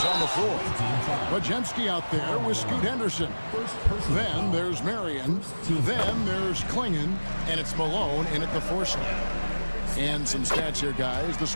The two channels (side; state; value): both; inverted; correlation -1.00